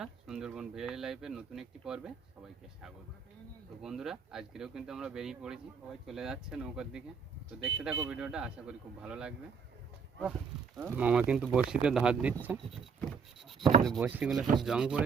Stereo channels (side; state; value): left; quieter; 5.9 dB